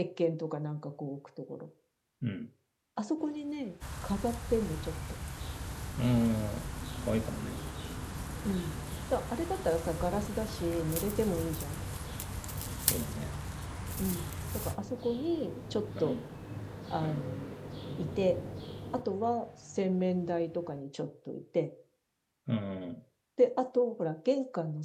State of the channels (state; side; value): identical; both; correlation 1.00